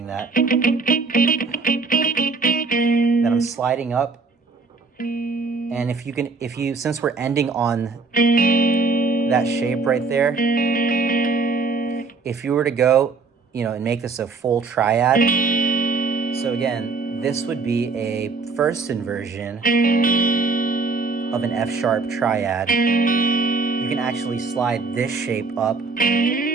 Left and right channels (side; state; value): left; quieter; 4.3 dB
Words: that. Then I'm sliding up, and since we're ending on that shape right there, if you were to go, and make this a full triad, so again, this would be a first inversion of an F sharp triad. You can actually slide this shape up